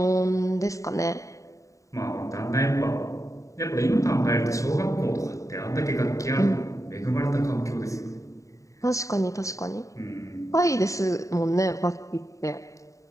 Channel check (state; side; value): late; right; 0.16 ms